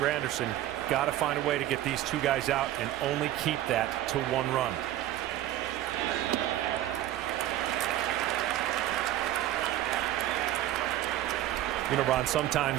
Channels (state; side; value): quieter; left; 13.5 dB